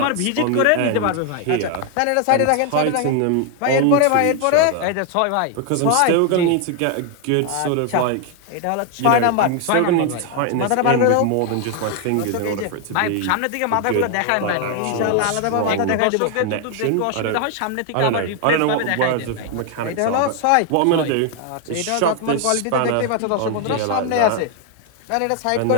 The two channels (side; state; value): both; different; correlation 0.01